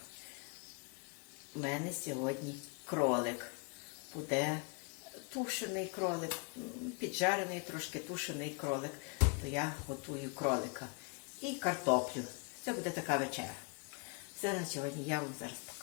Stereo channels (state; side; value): quieter; right; 34.4 dB